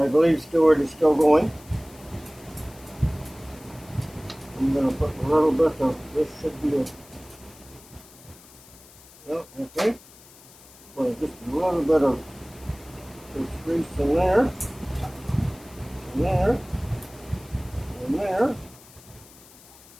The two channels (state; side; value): noise; left; hiss, 22 dB below the sound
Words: believe Stewart is still going. I'm going to put a little bit of, this should be a, no, okay. Put just a little bit of this grease in there, and there, and there.